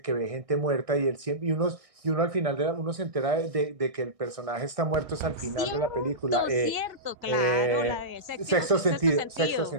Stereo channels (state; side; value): late; left; 1.5 ms